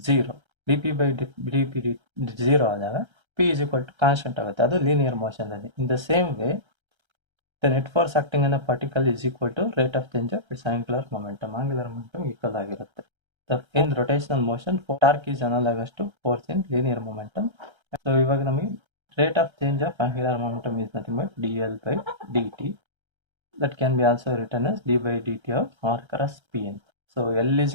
0. dp by dp 0 ಆದಾಗ p is equal to constant ಆಗುತ್ತೆ. ಅದು linear motion ಅಲ್ಲಿ. ಇನ್ the same way the net force acting on a particle is equal to rate of change of its angular momentum. angular momentum equal ಆಗಿರುತ್ತೆ. in rotational motion torque is analogous to force in linear momentum. So ಇವಾಗ ನಮಗೆ rate of change of angular momentum is nothing but dl by dt. that can be also written as d by dt of r cross p ಅಂತ. So l is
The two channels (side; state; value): left; late; 1.3 ms